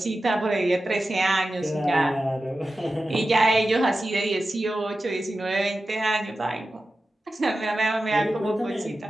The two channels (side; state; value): both; normal; correlation 0.93